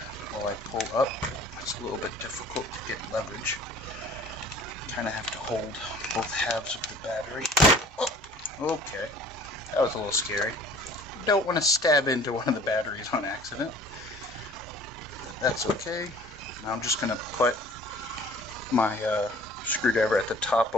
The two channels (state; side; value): normal; both; correlation 0.49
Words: while I pull up. It's a little bit difficult to get leverage. Kind of have to hold both halves of the battery. Oh, okay. That was a little scary. Don't want to stab into one of the batteries on accident. That's okay. Now I'm just going to put my screwdriver at the top